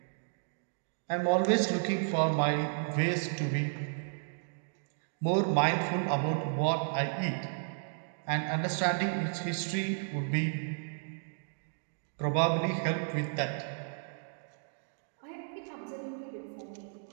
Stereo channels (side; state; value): left; silent; digital silence